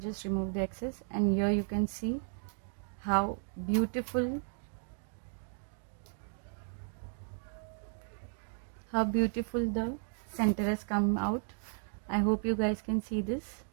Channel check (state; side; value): silent; left; 55 dB below the other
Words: just remove the excess, and here you can see how beautiful the center has come out. I hope you guys can see this.